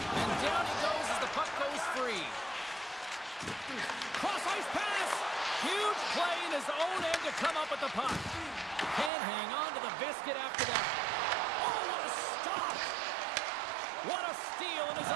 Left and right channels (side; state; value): left; drops out; at 9.1 s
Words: And down he goes as the puck goes free. Cross-ice pass. Huge play in his own end to come up with the puck. Can't hang on to the biscuit after that. Oh, what a stop. What a steal in his